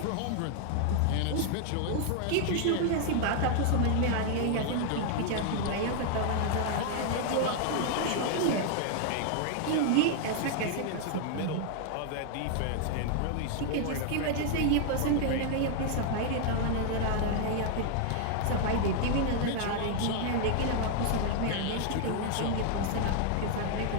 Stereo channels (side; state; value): both; different; correlation 0.00